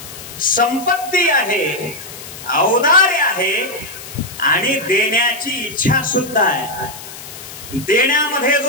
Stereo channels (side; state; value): left; noise; hiss, 14 dB below the sound